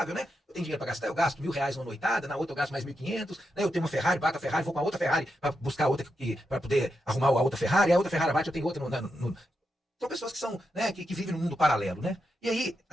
né? Eu tenho dinheiro pra gastar, eu gasto R$1.000 numa noitada, na outra eu gasto mais 1.500, né? Eu tenho uma Ferrari, bato a Ferrari, vou com a outra Ferrari pra buscar outra, pra poder arrumar a outra Ferrari, a outra Ferrari bate, eu tenho outra São pessoas que são, né, que vivem num mundo paralelo, né? E aí,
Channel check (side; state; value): both; normal; correlation 0.86